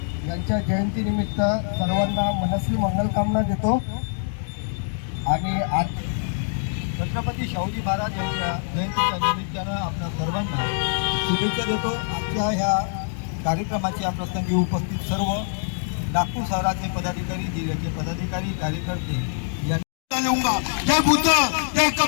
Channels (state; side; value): silent; right; digital silence